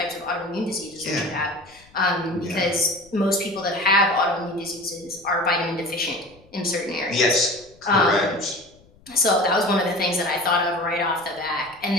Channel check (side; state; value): left; noise; rumble, 28 dB below the sound